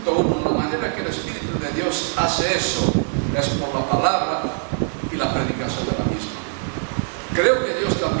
1. La manera que el Espíritu de Dios hace eso es por la palabra y la predicación de la misma. Creo que Dios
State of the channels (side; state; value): left; silent; 63 dB below the other